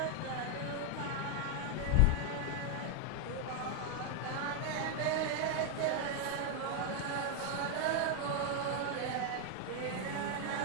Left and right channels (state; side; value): different; both; correlation 0.00